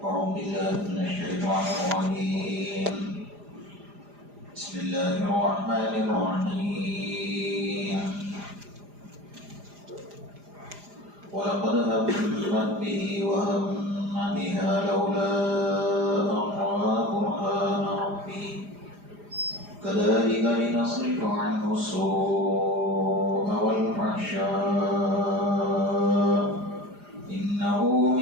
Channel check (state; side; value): late; left; 4.9 ms